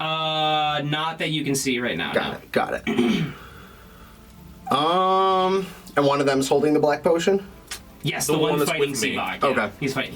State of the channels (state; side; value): identical; both; correlation 1.00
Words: Not that you can see right now. Got it. And one of them's holding the black potion? Yes, The the one one that's fighting with me. Seabog. Yeah. Okay. He's fighting.